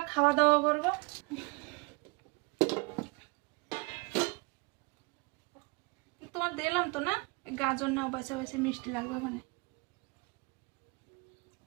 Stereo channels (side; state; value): left; quieter; 28.4 dB